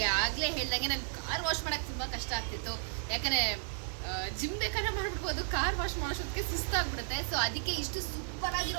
ಆಗಲೇ ಹೇಳ್ದಂಗೆ ನಾನು ಕಾರ್ ವಾಶ್ ಮಾಡೋಕ್ಕೆ ತುಂಬ ಕಷ್ಟ ಆಗ್ತಿತ್ತು. ಯಾಕಂದರೆ ಜಿಮ್ ಬೇಕಾದ್ರೆ ಮಾಡ್ಬಿಡ್ಬೋದು, ಕಾರ್ ವಾಶ್ ಮಾಡೋಷ್ಟೊತ್ತಿಗೆ ಸುಸ್ತಾಗ್ಬಿಡುತ್ತೆ. ಸೊ ಅದಕ್ಕೆ ಇಷ್ಟು ಸೂಪರ್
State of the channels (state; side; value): silent; left; 55 dB below the other